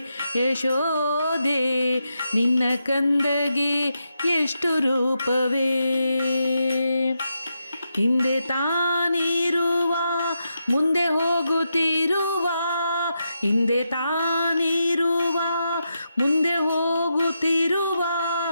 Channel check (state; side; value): inverted; both; correlation -0.85